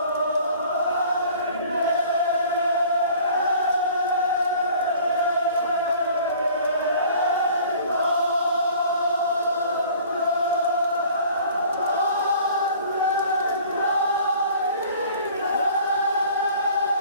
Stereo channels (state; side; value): inverted; both; correlation -0.49